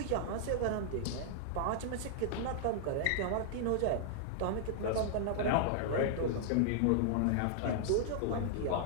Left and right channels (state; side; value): different; both; correlation -0.01